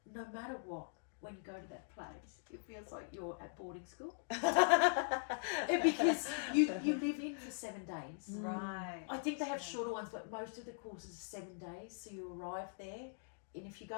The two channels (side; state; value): right; silent; digital silence